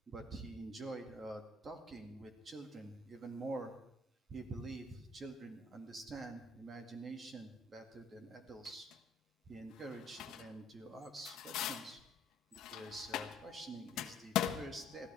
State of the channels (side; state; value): right; quieter; 3.2 dB